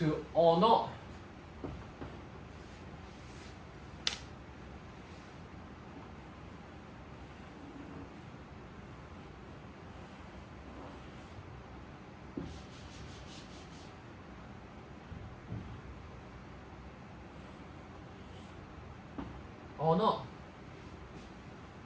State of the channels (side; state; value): both; identical; correlation 1.00